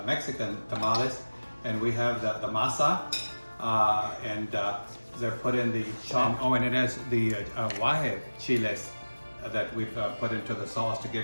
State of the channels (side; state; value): both; inverted; correlation -1.00